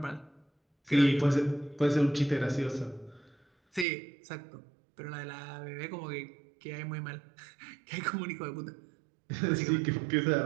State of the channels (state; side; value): drops out; left; at 3.9 s